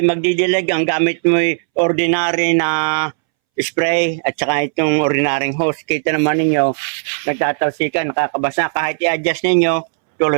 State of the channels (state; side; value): silent; left; 66 dB below the other